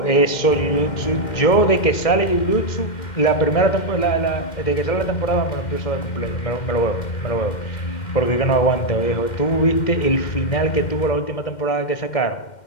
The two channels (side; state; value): right; late; 2.1 ms